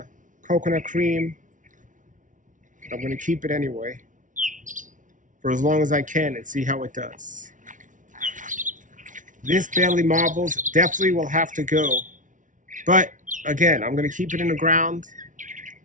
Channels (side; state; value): left; late; 0.37 ms